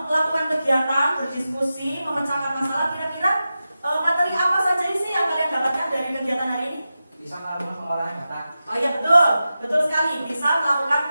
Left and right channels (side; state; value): both; inverted; correlation -0.93